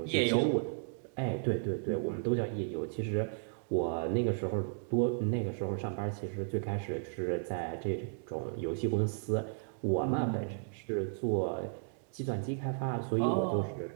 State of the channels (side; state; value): left; silent; digital silence